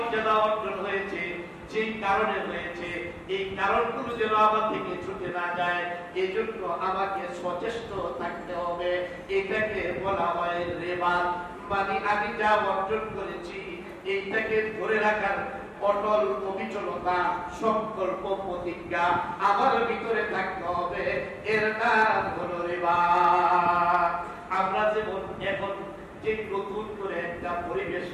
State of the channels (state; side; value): identical; both; correlation 1.00